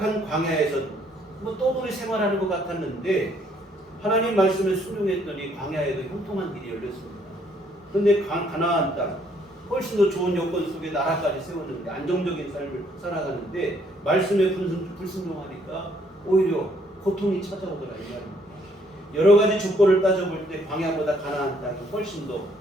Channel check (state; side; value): normal; both; correlation 0.66